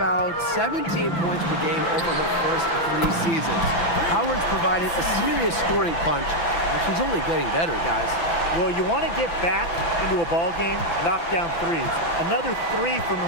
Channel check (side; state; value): right; late; 6.0 ms